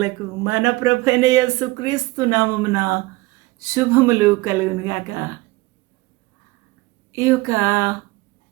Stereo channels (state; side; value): quieter; left; 21.4 dB